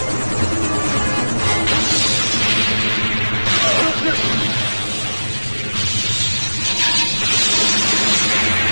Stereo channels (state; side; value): inverted; both; correlation -1.00